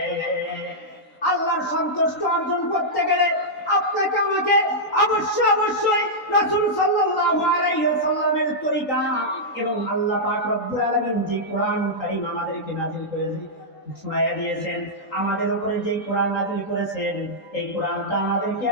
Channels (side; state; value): right; late; 3.8 ms